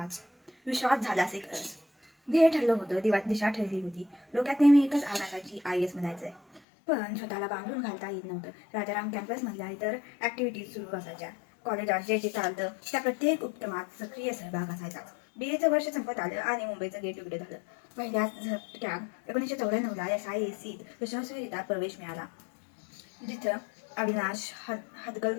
विश्वास झालाच एक खरंच. ध्येय ठरलं होतं, दिशा ठरली होती. डोक्यात नेहमी एकच आग असायची, IAS म्हणायचंय. पण स्वतःला बांधून घालता येत नव्हतं. राजाराम कॅम्पसमधल्या इतर ॲक्टिव्हिटीज सुरू असायच्या. कॉलेजात जे जे चालतं त्या प्रत्येक उपक्रमात सक्रिय सहभाग असायचा. BAचं वर्ष संपत आलं आणि मुंबईचं गेट उघडे झालं. पहिल्याच झटक्यात 1994ला SIACत यशस्वीरित्या प्रवेश मिळाला, जिथं अविनाश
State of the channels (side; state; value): right; drops out; at 6.6 s